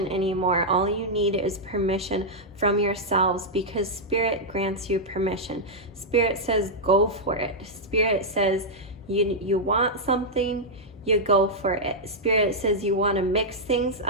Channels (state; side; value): normal; both; correlation -0.06